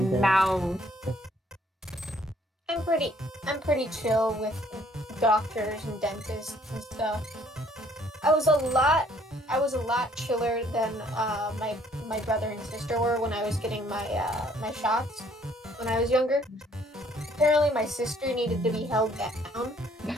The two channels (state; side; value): normal; both; correlation 0.62